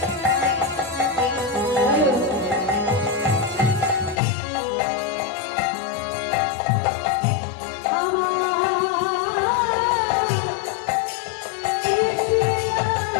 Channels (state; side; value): drops out; right; at 4.2 s